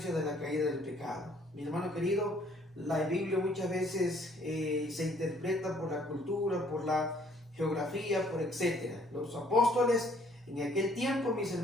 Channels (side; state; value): both; normal; correlation 0.61